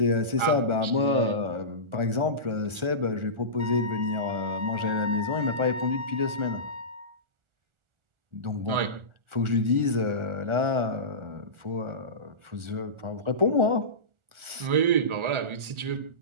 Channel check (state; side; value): late; left; 1.4 ms